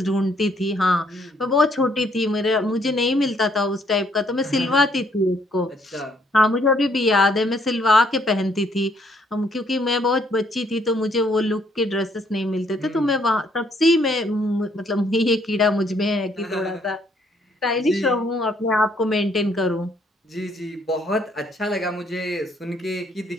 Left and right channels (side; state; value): both; normal; correlation 0.68